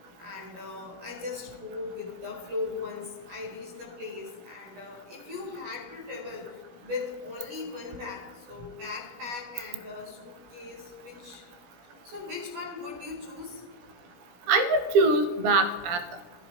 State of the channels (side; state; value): left; late; 17 ms